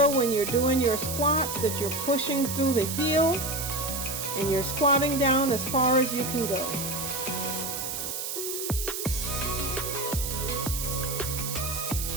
when you're doing your squats that you're pushing through the heel and you're squatting down as far as you can go.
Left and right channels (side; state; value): right; noise; hiss, 4 dB below the sound